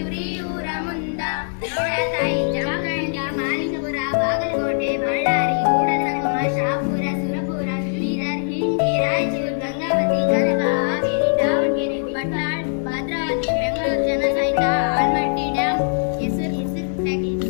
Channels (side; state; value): right; silent; digital silence